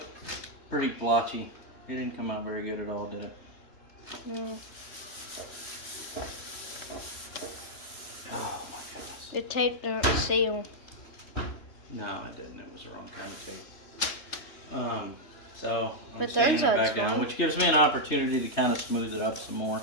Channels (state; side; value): late; right; 3.4 ms